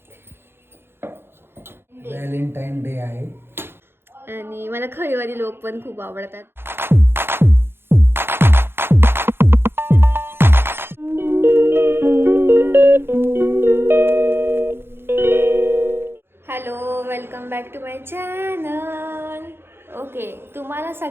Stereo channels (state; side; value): late; left; 0.11 ms